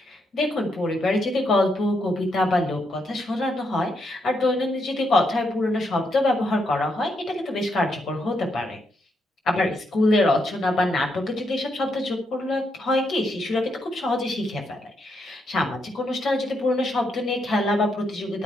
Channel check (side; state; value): both; normal; correlation 0.79